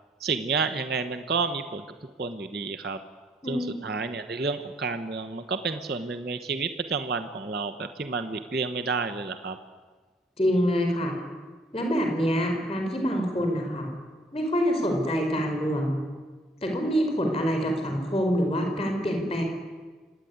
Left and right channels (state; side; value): normal; both; correlation 0.64